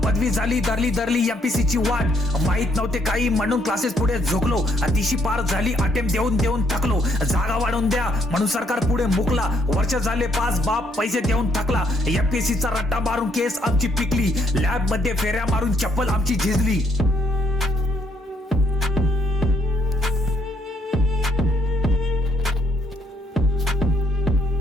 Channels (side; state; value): both; normal; correlation 0.71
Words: पदवी झाली धरली एमपीसी ची वाट, माहित नव्हते काही म्हणून क्लासेस पुढे झोकलो, तिशी पार झाली अटेम्प्ट देऊन थकलो, जागा वाढवून द्या म्हणून सरकार पुढे मुकला, वर्ष झाले 5 बाप पैसे देऊन थकला, एमपीसी चा रट्टा मारून केस आमची पिकली, लॅब मध्ये फेऱ्या मारून चप्पल आमची झिजली.